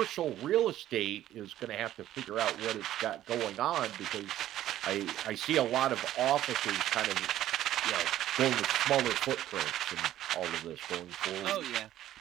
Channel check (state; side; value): quieter; left; 12.9 dB